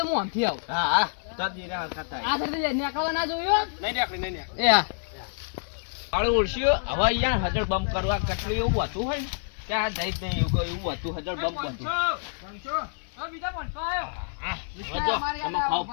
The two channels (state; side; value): silent; right; 57 dB below the other